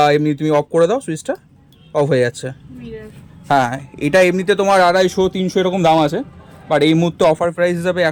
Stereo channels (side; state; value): both; identical; correlation 1.00